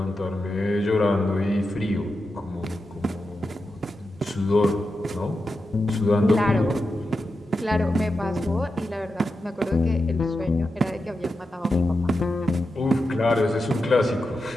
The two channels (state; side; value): normal; both; correlation 0.89